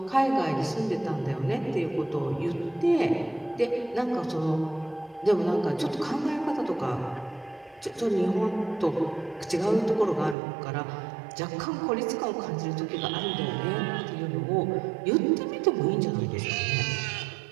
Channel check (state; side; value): drops out; left; at 10.4 s